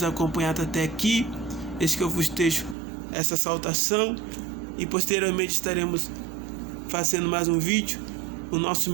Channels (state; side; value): drops out; left; at 2.8 s